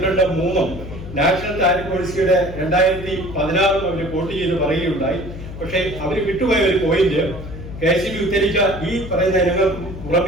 നാഷണൽ താരിഫ് പോളിസിയുടെ 2016 അവർ കോട്ട് ചെയ്ത് പറയുകയുണ്ടായി. പക്ഷേ അവർ വിട്ടുപോയ ഒരു പോയിന്റ്, KCB ഉദ്ധരിച്ച ഈ പറയുന്ന ഇനങ്ങൾക്ക്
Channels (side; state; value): left; noise; hum, 11 dB below the sound